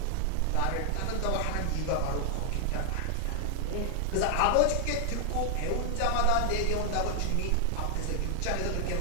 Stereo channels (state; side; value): different; both; correlation 0.00